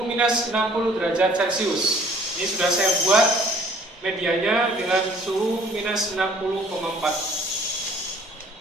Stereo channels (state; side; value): normal; both; correlation 0.56